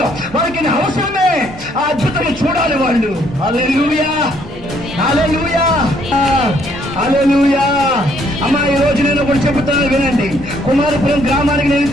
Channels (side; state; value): both; normal; correlation 0.67